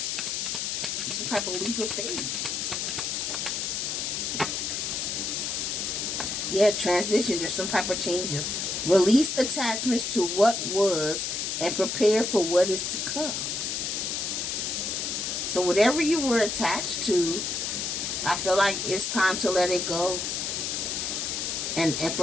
Some type of leap of faith. Yeah, transition. There's some type of changes. Release attachments to what was and prepare for what is to come. So whatever you were attached to, I feel like it's time to let it go and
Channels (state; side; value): noise; left; hiss, 1 dB below the sound